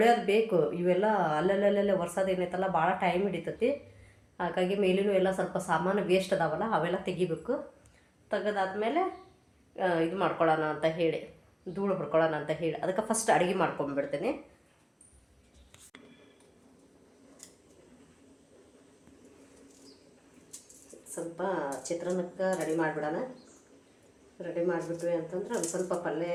ಬೇಕು. ಇವೆಲ್ಲ ಅಲ್ಲಲ್ಲೇ ಒರ್ಸೋದು ಏನೈತಲ್ಲ ಭಾಳ ಟೈಮ್ ಹಿಡಿತೈತಿ. ಹಾಗಾಗಿ ಮೇಲಿನೂ ಎಲ್ಲ ಸ್ವಲ್ಪ ಸಾಮಾನು ವೇಸ್ಟ್ ಅದಾವಲ್ಲ, ಅವೆಲ್ಲ ತೆಗಿಬೇಕು. ತೆಗೆದಾದ್ಮೇಲೆ ಇದು ಮಾಡ್ಕೊಳ್ಳೋಣ ಅಂತ ಹೇಳಿ, ಧೂಳು ಹೊಡ್ಕೊಳ್ಳೋಣ ಅಂತ ಹೇಳಿ ಅದಕ್ಕೆ ಫಸ್ಟ್ ಅಡುಗೆ ಮಾಡ್ಕೊಂಡ್ಬಿಡ್ತೇನೆ. ಸ್ವಲ್ಪ ಚಿತ್ರಾನ್ನಕ್ಕೆ ರೆಡಿ ಮಾಡಿಬಿಡೋಣ. ರೆಡಿ ಮಾಡಿಬಿಟ್ವಿ ಅಂತಂದ್ರೆ ಒಂದು ಸ್ವಲ್ಪ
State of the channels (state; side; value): identical; both; correlation 1.00